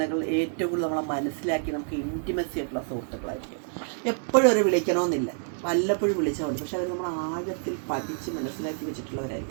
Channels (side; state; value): left; silent; digital silence